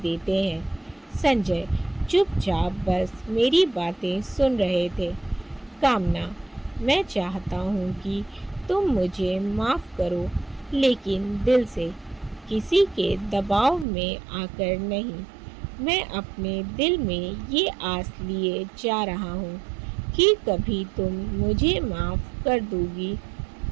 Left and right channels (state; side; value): drops out; left; at 13.9 s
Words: हैं। संजय चुपचाप बस मेरी बातें सुन रहे थे। कामना, मैं चाहता हूँ कि तुम मुझे माफ़ करो, लेकिन दिल से, किसी के दबाव में आकर नहीं। मैं अपने दिल में ये आस लिए जा रहा हूँ कि कभी तुम मुझे माफ़ कर दोगी